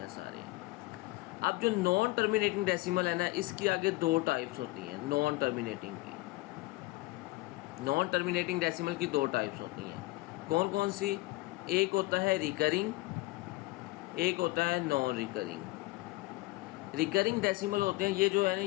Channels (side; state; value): right; quieter; 21.3 dB